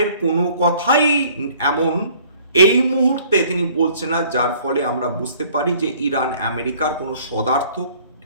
কোনো কথাই এমন এই মুহূর্তে তিনি বলছেন না যার ফলে আমরা বুঝতে পারি যে ইরান আমেরিকার কোনো সদার্থক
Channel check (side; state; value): both; inverted; correlation -0.56